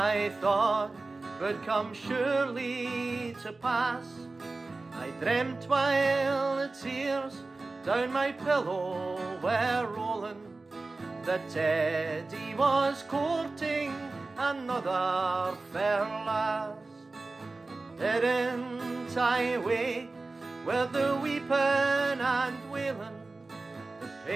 thought would come surely to pass. I dreamt while the tears down my pillow were rolling, that Teddy was courting another fair lass. Didn't I wake with the weeping and wailing? The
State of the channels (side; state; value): left; quieter; 3.5 dB